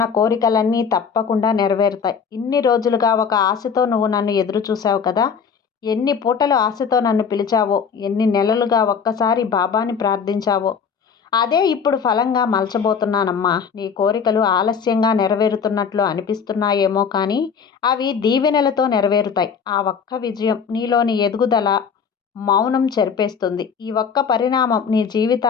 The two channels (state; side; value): quieter; right; 6.5 dB